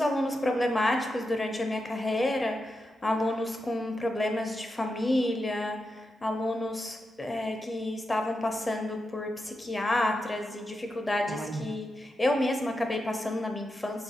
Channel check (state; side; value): normal; both; correlation 0.88